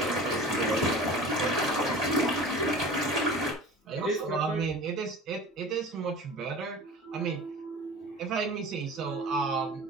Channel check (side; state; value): both; normal; correlation 0.38